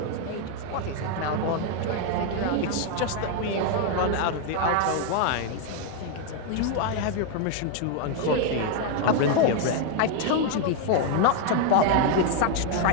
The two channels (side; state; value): both; different; correlation 0.00